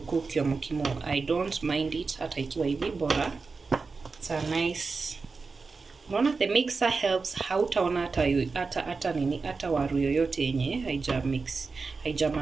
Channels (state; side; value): quieter; left; 4.4 dB